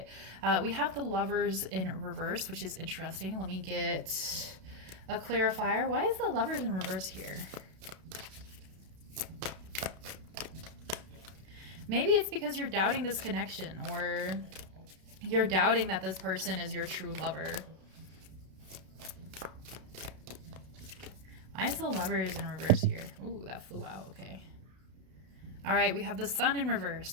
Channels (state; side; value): late; left; 32 ms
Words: We have the Lovers in reverse, which is interesting. Let me get a clarifier. Why is the Lovers in reverse here? Maybe it's because you're doubting this connection, or you're doubting that this person is your true lover. Why is the Lovers in reverse here? Ooh, that flew out. Okay. All right, we have the Sun in